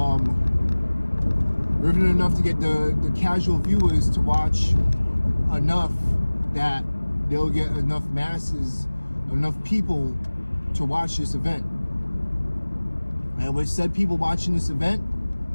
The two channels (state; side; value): inverted; both; correlation -1.00